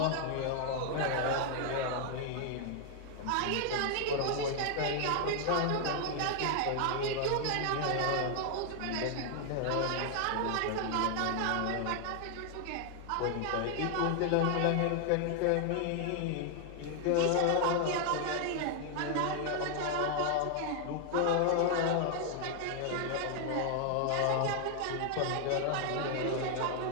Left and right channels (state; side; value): different; both; correlation 0.00